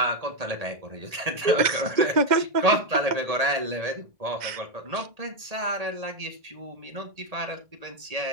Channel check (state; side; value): late; left; 1.8 ms